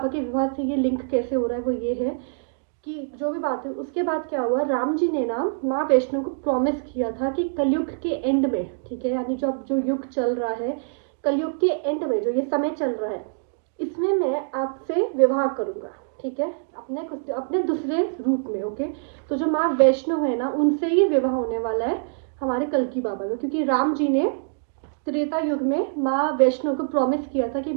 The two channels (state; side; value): silent; left; digital silence